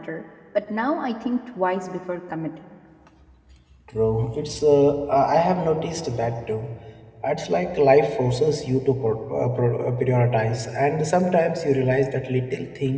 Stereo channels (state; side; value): identical; both; correlation 1.00